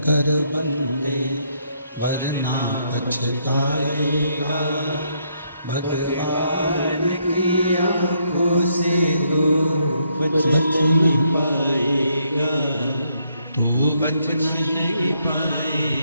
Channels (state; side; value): inverted; both; correlation -0.74